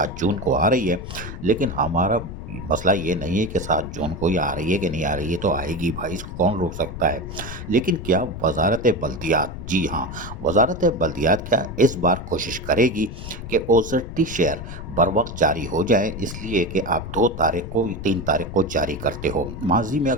जून को आ रही है। लेकिन हमारा मसला ये नहीं है कि 7 जून को ये आ रही है कि नहीं आ रही है, तो आएगी भाई, इसको कौन रोक सकता है। लेकिन क्या वजारत बल्दियात, जी हाँ, वजारत बल्दियात क्या इस बार कोशिश करेगी कि ओजरटी शेयर बर वक्त जारी हो जाए, इसलिए कि आप 2 तारीख को 3 तारीख को जारी करते हो। माजी में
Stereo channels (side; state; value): left; noise; rumble, 9 dB below the sound